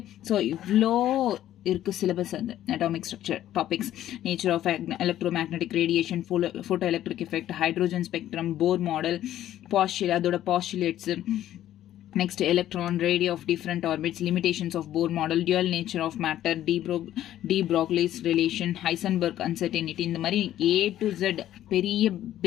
ஸோ இவ்வளோ இருக்குது சிலபஸ். அந்த atomic structure topics: nature of electromagnetic radiation, photo electric effect, hydrogen spectrum, Bohr model, அதோட postulates, next electron, radio of different orbits, limitations of Bohr model, dual nature of matter, de Broglie's relation, Heisenberg uncertainty. இந்த மாதிரி A to Z பெரிய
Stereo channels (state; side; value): quieter; right; 12.5 dB